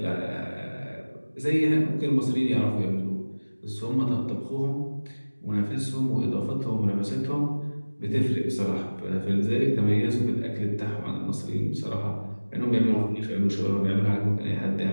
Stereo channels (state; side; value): inverted; both; correlation -1.00